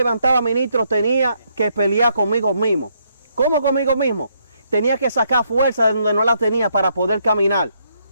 ministro, tenía que pelear conmigo mismo. ¿Cómo conmigo mismo? Tenía que sacar fuerza de donde no la tenía para poder caminar.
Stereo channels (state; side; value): inverted; both; correlation -0.74